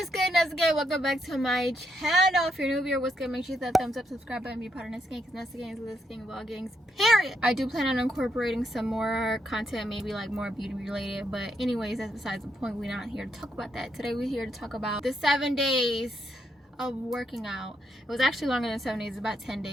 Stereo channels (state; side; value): normal; both; correlation 0.78